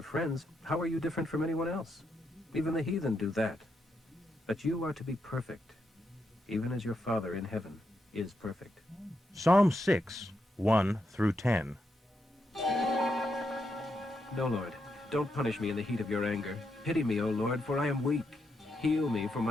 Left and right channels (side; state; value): both; normal; correlation 0.82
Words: friends, how are you different from anyone else? Even the heathen do that. But you are to be perfect, even as your Father in heaven is perfect. Psalm 6:1 through 10. No, Lord, don't punish me in the heat of your anger. Pity me, O Lord, for I am weak. Heal me, for